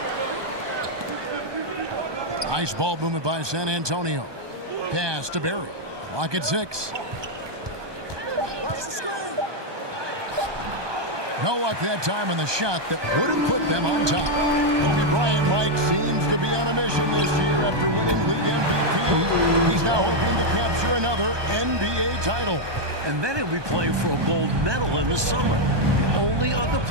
Nice ball movement by San Antonio. Pass to Barry. Clock at 6. No luck that time on the shot that would have put them on top. Kobe Bryant, Mike, seems to be on a mission this year after winning league MVP. He's now hoping to capture another NBA title. And then he'll be playing for a gold medal in the summer. The only other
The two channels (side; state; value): left; late; 1.2 ms